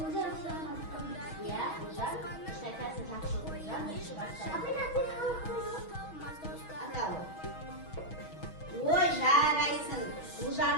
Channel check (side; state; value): right; late; 6.3 ms